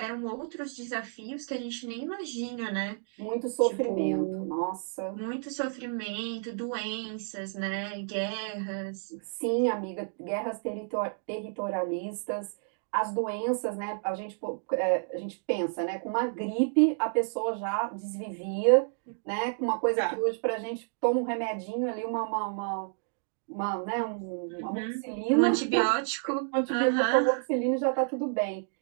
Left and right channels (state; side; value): silent; left; digital silence